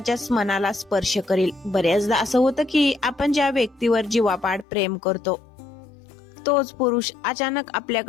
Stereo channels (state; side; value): drops out; right; at 4.7 s